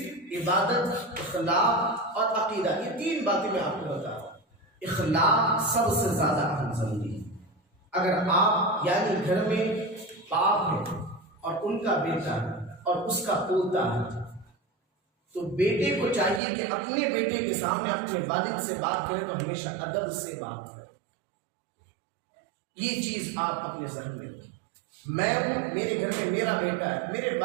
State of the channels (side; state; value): left; drops out; at 16.4 s